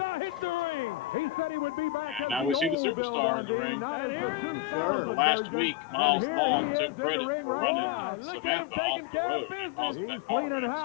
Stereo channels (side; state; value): right; drops out; at 2.8 s